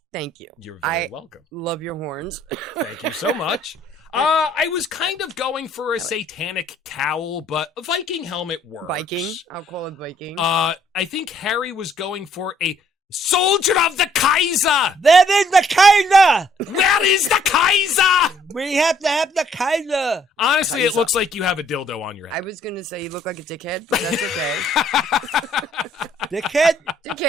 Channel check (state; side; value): normal; both; correlation 0.64